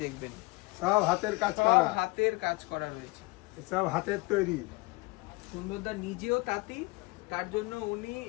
দেখবেন। সব হাতের কাজ করা, হাতের কাজ করা রয়েছে, সব হাতের তৈরি। সুন্দরদা নিজেও তাঁতি, তার জন্য উনি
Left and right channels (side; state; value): right; quieter; 24.4 dB